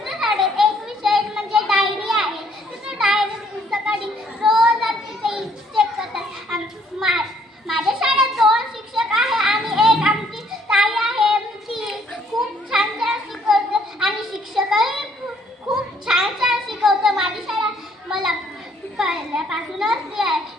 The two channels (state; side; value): normal; both; correlation 0.64